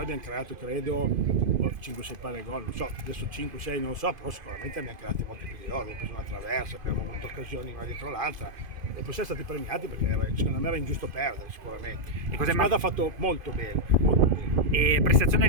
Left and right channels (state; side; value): late; left; 2.5 ms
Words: abbiamo creato credo 5-6 palle gol, non so, adesso 5-6 non lo so, però sicuramente abbiamo creato molti più di loro, abbiamo preso una traversa, abbiamo avuto occasioni una dietro l'altra e poi siamo stati premiati perché secondo me era ingiusto perdere sicuramente. La squadra ha fatto molto bene, molto bene. E prestazione